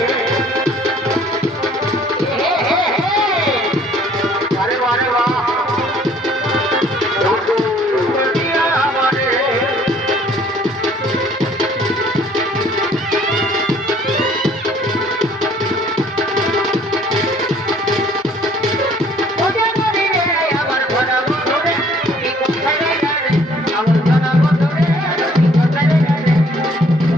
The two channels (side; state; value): both; normal; correlation 0.58